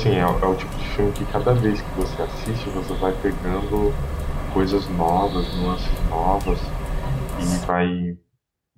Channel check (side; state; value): both; identical; correlation 1.00